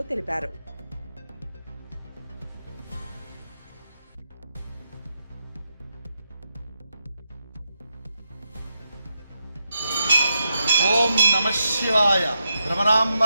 తెలిపారు. ఓం నమః శివాయ. భ్రమరాంబ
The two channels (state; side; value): inverted; both; correlation -0.85